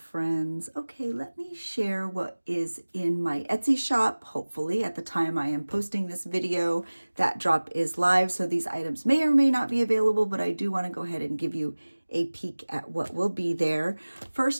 Okay, let me share what is in my Etsy shop. Hopefully at the time I am posting this video, that drop is live, so these items may or may not be available, but I do want to go ahead and give you a peek at what will be there.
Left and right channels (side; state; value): both; inverted; correlation -1.00